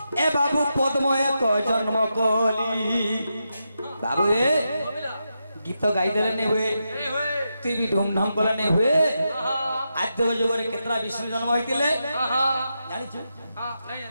ए बाबू पद्म एक जन्म कली बाबू रे गीत गाई देले नहीं हुए तू भी धूमधाम कले नहीं हुए आद्य जुग रे केतरा विष्णु जन्म होइतिले जानि छु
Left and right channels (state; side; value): inverted; both; correlation -0.86